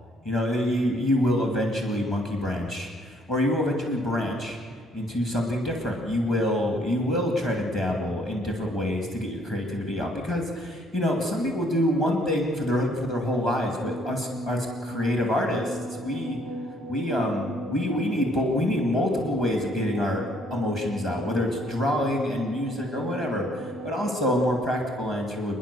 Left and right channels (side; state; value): both; normal; correlation 0.65